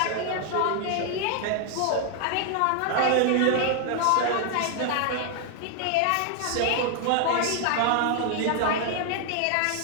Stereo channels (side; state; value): both; different; correlation 0.00